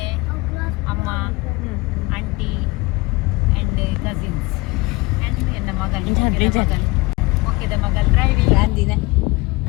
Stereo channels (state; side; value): quieter; right; 23.4 dB